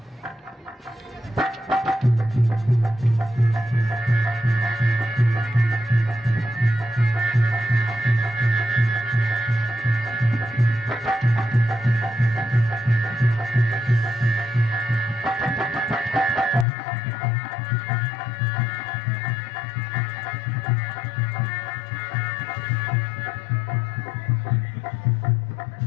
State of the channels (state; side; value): drops out; right; at 16.7 s